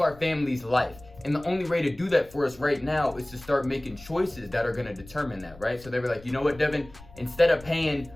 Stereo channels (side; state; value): left; noise; rumble, 21 dB below the sound